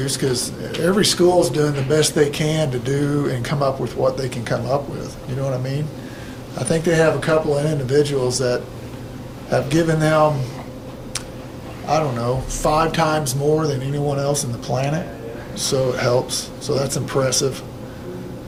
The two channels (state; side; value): identical; both; correlation 1.00